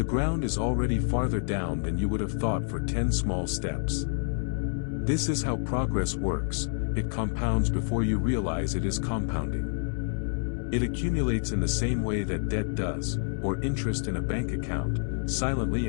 ground is already farther down than you would have thought for 10 small steps. This is how progress works, it compounds before you realize it is compounding. It accumulates in the same way that debt does, or interest in a bank account,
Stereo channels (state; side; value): silent; right; 59 dB below the other